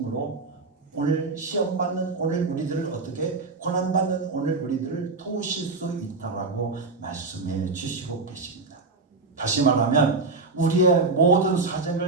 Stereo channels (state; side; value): quieter; left; 3.9 dB